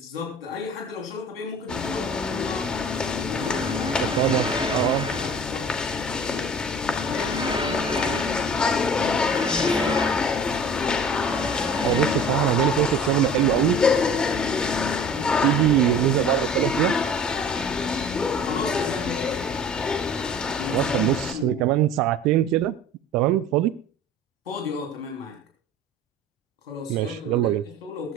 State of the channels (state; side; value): normal; both; correlation 0.43